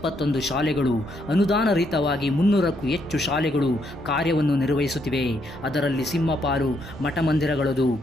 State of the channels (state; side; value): normal; both; correlation 0.75